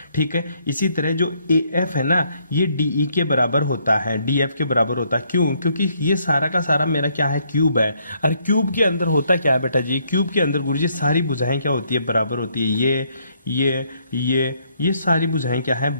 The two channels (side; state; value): both; inverted; correlation -0.70